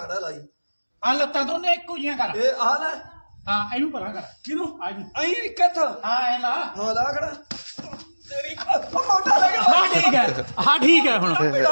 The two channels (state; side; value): inverted; both; correlation -1.00